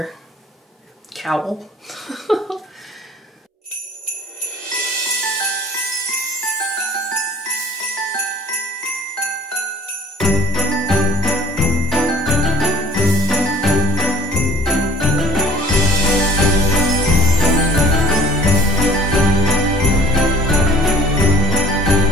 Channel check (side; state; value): both; normal; correlation 0.50